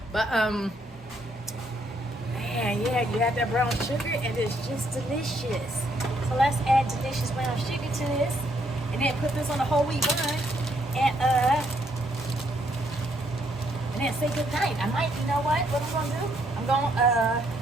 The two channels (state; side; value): normal; both; correlation 0.72